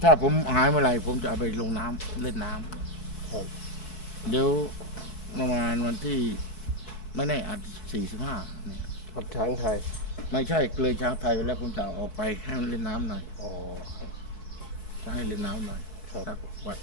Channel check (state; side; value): late; right; 4.6 ms